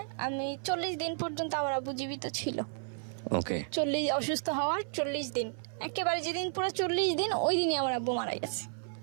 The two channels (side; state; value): left; silent; 56 dB below the other